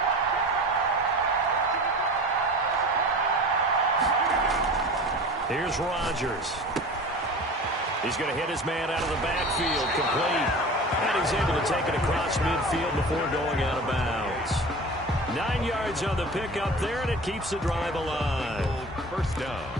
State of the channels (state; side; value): normal; both; correlation 0.37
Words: Here's Rodgers. He's going to hit his man out of the backfield, complete. And he's able to take it across midfield before going out of bounds. 9 yards on the pickup there, and it keeps the drive alive. First down.